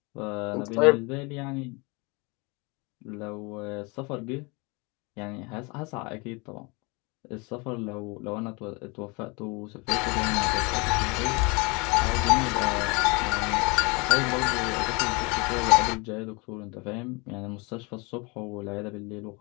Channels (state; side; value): quieter; right; 28.5 dB